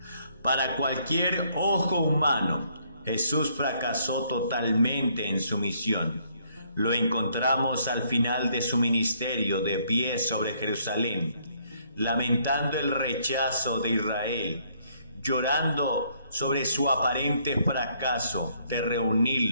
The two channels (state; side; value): inverted; both; correlation -0.68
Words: Para cualquier ojo humano, Jesús fracasó totalmente en su misión. Lo encontramos al final de su ministerio, de pie sobre Jerusalén, lamentando el rechazo de Israel, llorando sobre su aparente fracaso de